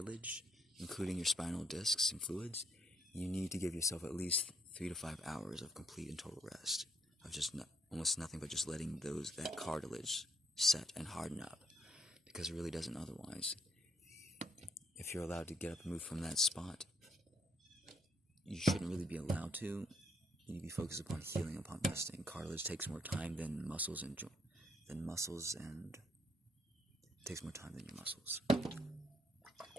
including your spinal discs and fluids, you need to give yourself at least 3 to 5 hours of complete and total rest, of just almost nothing but just letting that cartilage set and harden up, because it really doesn't otherwise. If you're allowed to get up and move from that spot, you shouldn't really be allowed to. You need to be focused upon healing, upon resting. Cartilage takes more time than muscles and it takes more time than your muscles.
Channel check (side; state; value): both; normal; correlation 0.70